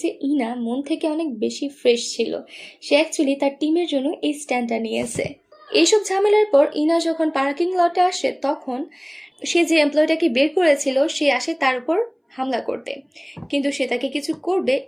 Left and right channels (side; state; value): both; identical; correlation 1.00